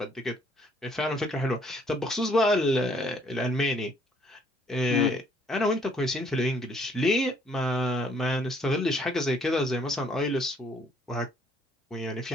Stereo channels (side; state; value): both; normal; correlation 0.64